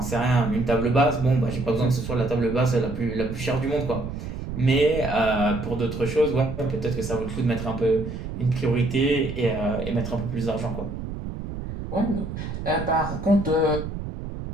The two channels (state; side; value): noise; right; rumble, 7 dB below the sound